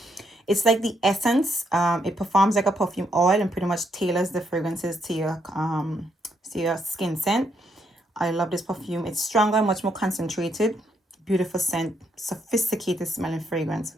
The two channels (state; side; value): normal; both; correlation 0.76